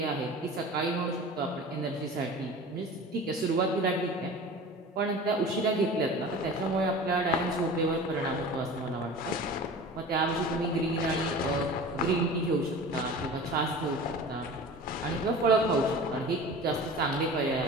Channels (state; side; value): normal; both; correlation 0.37